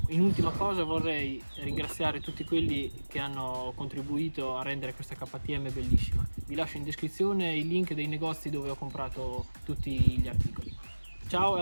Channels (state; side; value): inverted; both; correlation -1.00